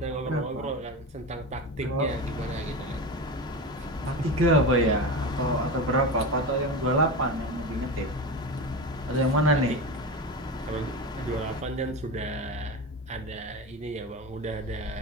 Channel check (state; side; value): normal; both; correlation 0.24